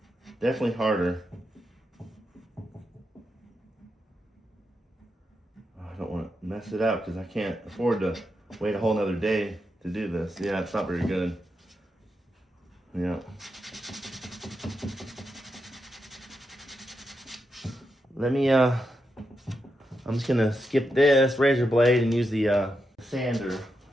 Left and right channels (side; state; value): both; normal; correlation 0.85